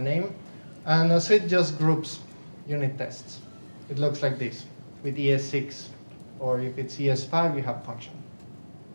and a suite just groups unit tests. It looks like this, with ES6, or if it's ES5, you have function.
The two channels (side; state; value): both; inverted; correlation -1.00